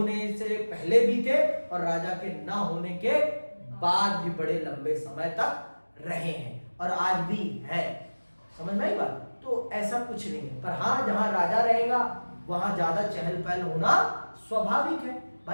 से पहले भी थे और राजा के न होने के बाद भी बड़े लंबे समय तक रहे हैं और आज भी है। समझ में आई बात? तो ऐसा कुछ नहीं है, पर हाँ जहां राजा रहेगा वहां ज्यादा चहल पहल होना स्वाभाविक है।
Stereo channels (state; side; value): inverted; both; correlation -1.00